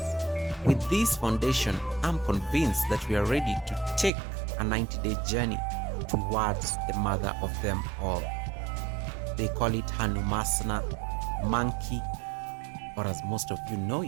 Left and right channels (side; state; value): left; drops out; at 4.1 s